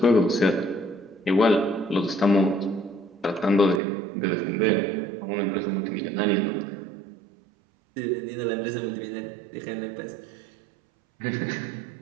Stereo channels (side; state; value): left; drops out; at 3.8 s